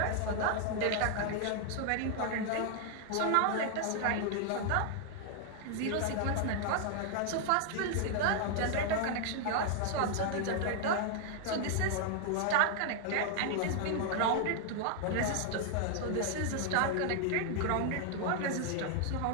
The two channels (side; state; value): both; different; correlation 0.00